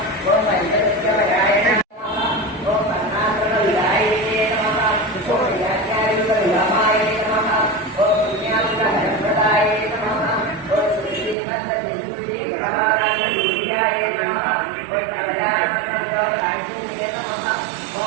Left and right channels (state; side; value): drops out; left; at 11.4 s